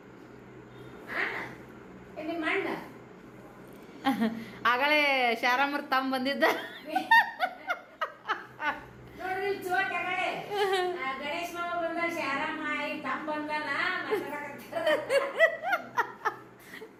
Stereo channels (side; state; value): both; identical; correlation 1.00